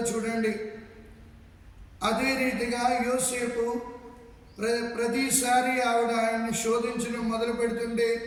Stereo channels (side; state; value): both; identical; correlation 1.00